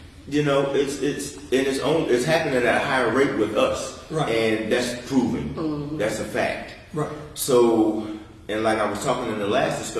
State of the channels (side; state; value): both; identical; correlation 1.00